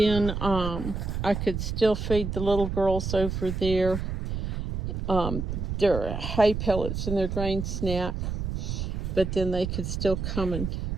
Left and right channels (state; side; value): noise; right; rumble, 3 dB below the sound